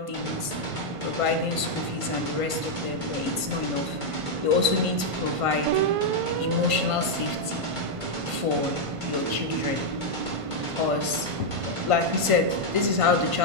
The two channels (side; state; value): left; late; 1.5 ms